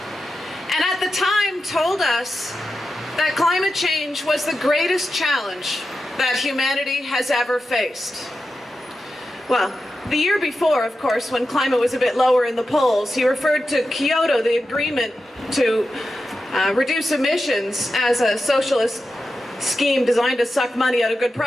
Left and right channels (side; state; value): both; normal; correlation 0.91